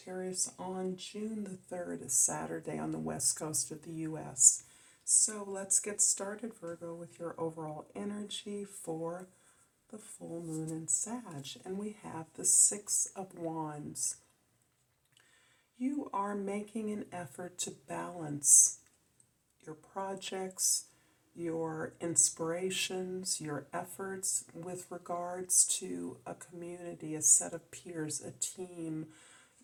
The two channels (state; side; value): identical; both; correlation 1.00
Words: on June the 3rd, a Saturday on the west coast of the U.S. So let's get started, Virgo, with your overall energy for the full moon in Sag. And we have the Six of Wands. You are making an effort to balance your projects, your inspirations, your efforts with regards to a community, a set of peers, a team,